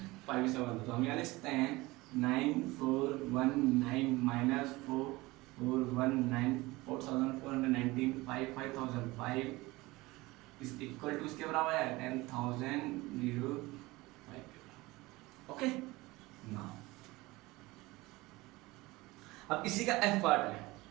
से तो हम यहाँ लिख सकते हैं 9419 माइनस 4419 4419 5005 इज इक्वल टू इसके बराबर है 10,005। ओके नाउ अब इसी का एफ पार्ट है,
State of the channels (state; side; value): quieter; left; 21.1 dB